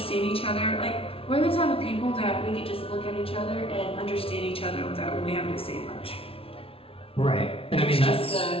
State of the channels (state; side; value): late; right; 0.26 ms